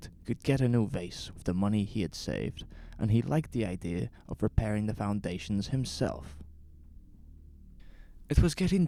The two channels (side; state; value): both; identical; correlation 1.00